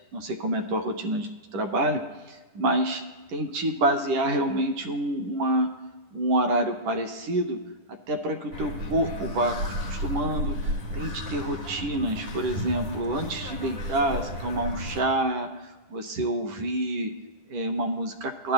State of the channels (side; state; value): left; late; 10 ms